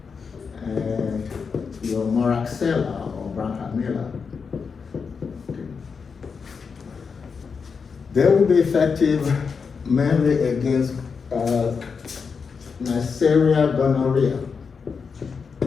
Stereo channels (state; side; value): quieter; right; 5.6 dB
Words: and your Moraxella or Branhamilla, they will be effective mainly against Neisseria gonorrhea.